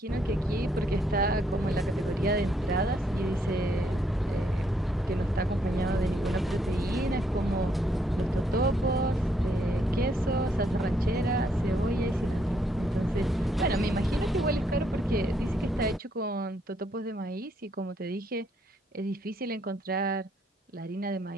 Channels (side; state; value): both; normal; correlation 0.72